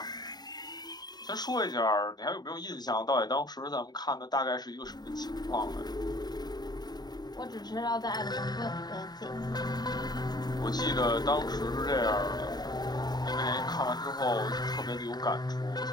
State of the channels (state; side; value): late; right; 0.20 ms